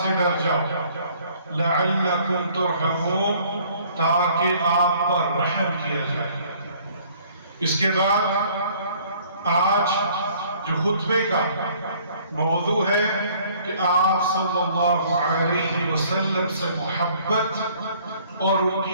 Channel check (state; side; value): inverted; both; correlation -0.57